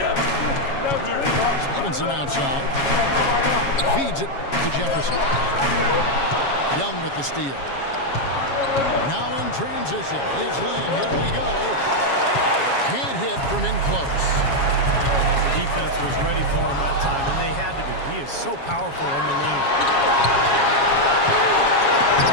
Stevenson outside. Feeds it to Jefferson. Young with the steal. Now in transition. It's Lin. Here we go. Can't hit from in close. Defense was ready for him that time, and they had to be. He is so powerful in the lane.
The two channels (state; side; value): late; right; 7.3 ms